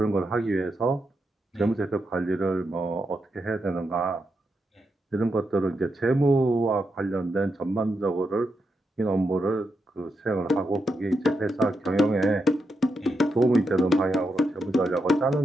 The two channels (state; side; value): normal; both; correlation 0.84